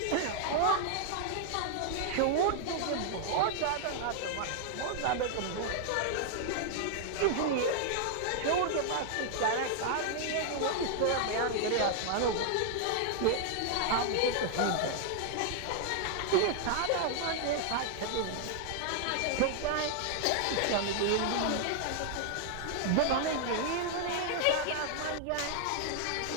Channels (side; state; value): both; different; correlation 0.00